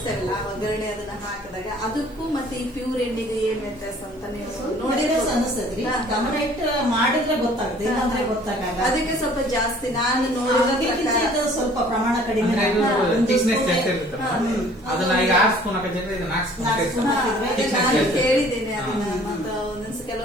ಒಗ್ಗರಣೆ ಅದನ್ನ ಹಾಕಿದಾಗ ಅದಕ್ಕೂ ಮತ್ತೆ ಈ ಪ್ಯೂರ್ ಎಣ್ಣೆಗೆ ಏನ್ ವ್ಯತ್ಯಾಸ ಅಂತ ನೀವು ನೋಡಿದ್ರೆ ಅನಿಸ್ತದ್ರಿ. ಗಮನ ಇಟ್ಟು ಮಾಡಿದ್ರೆ ಗೊತ್ತಾಗುತ್ತೆ, ಇಲ್ಲಾಂದ್ರೆ ಗೊತ್ತಾಗಲ್ಲ. ಅದಕ್ಕೆ ಸ್ವಲ್ಪ ಜಾಸ್ತಿ ನಾನು ನೋಡಿದ ಸ್ವಲ್ಪ ಪ್ರಮಾಣ ಕಡಿಮೆ. ಅದನ್ನ ಈಗ 6 ಸ್ಪೂನ್ ಹಾಕಿದ್ರೆ ಇದು 4 ಸ್ಪೂನ್ ನಾನು ಕೇಳಿದ್ದೇನೆ ಅದನ್ನ. ಮತ್ತೆ ಒಂದೊಂದ್ಸ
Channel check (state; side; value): normal; both; correlation 0.53